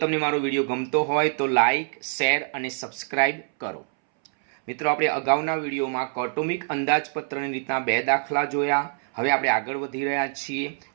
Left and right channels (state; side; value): silent; left; 62 dB below the other